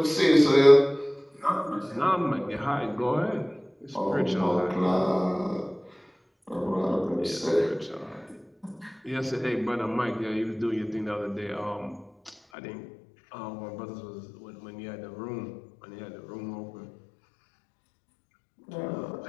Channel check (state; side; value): drops out; right; at 12.4 s